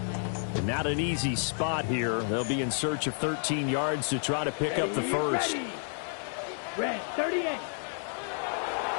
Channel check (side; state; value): right; silent; 58 dB below the other